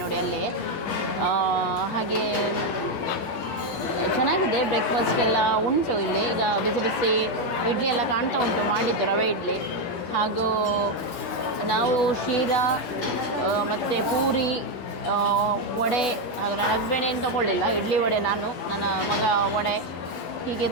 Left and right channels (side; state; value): right; late; 11 ms